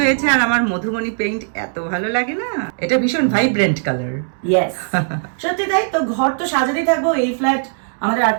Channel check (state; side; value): silent; left; 67 dB below the other